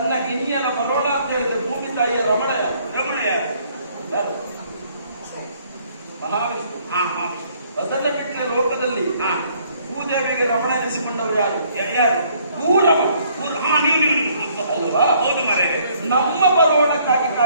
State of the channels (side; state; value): both; inverted; correlation -0.64